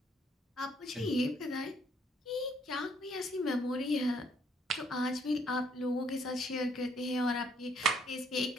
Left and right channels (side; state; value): both; normal; correlation 0.67